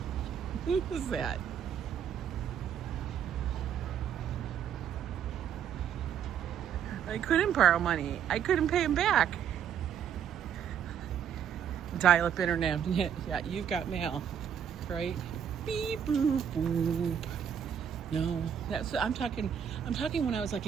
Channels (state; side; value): quieter; left; 8.6 dB